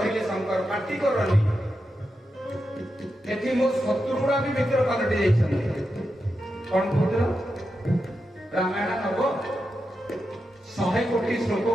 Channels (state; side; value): normal; both; correlation 0.88